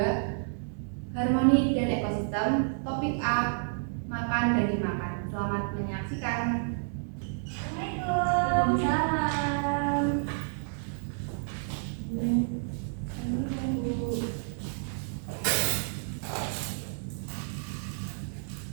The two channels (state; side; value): silent; left; digital silence